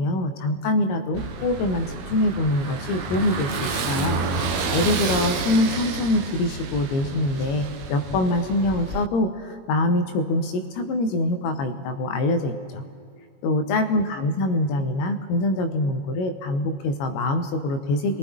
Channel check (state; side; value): late; right; 22 ms